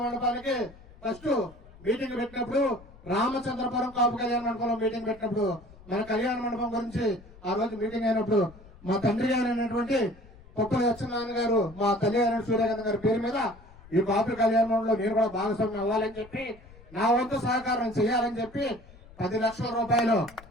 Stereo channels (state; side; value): noise; left; rumble, 22 dB below the sound